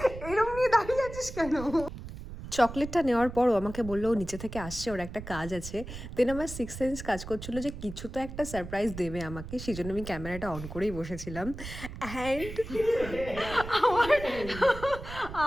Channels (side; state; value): right; noise; rumble, 11 dB below the sound